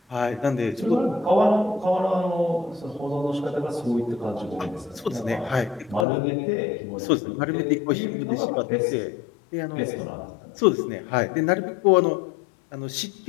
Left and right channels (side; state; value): right; drops out; at 6.1 s